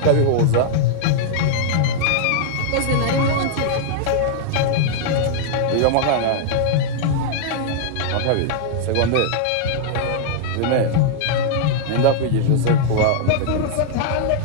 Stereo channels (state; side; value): different; both; correlation -0.01